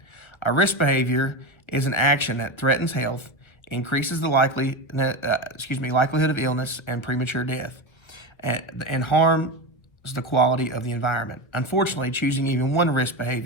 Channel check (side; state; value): right; late; 1.5 ms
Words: A risk behavior is an action that threatens health, increases the likelihood of illness and premature death, and harms the quality of the environment. Unfortunately, choosing even one risk